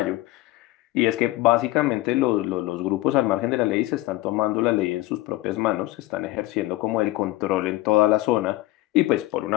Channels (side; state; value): right; quieter; 18.1 dB